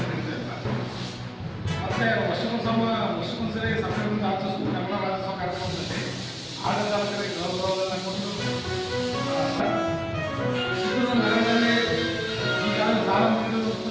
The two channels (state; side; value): identical; both; correlation 1.00